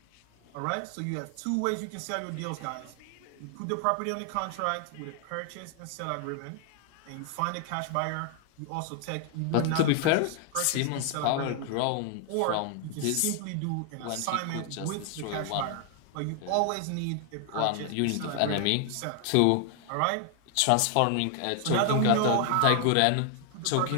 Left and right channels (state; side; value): different; both; correlation 0.00